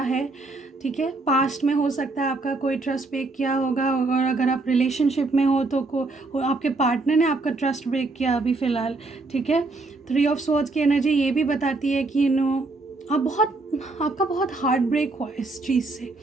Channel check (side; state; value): left; quieter; 3.3 dB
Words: है, ठीक है। पास्ट में हो सकता है आपका कोई ट्रस्ट ब्रेक किया होगा, और अगर आप रिलेशनशिप में हो तो आपके पार्टनर ने आपका ट्रस्ट ब्रेक किया अभी फ़िलहाल, ठीक है। 3 ऑफ स्वॉर्ड्स की एनर्जी ये भी बताती है कि आपका बहुत हार्ट ब्रेक हुआ इस चीज़ से,